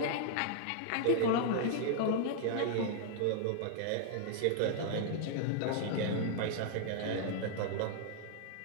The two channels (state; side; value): different; both; correlation -0.01